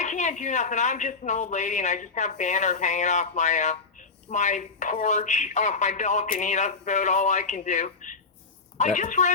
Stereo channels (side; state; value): right; quieter; 4.3 dB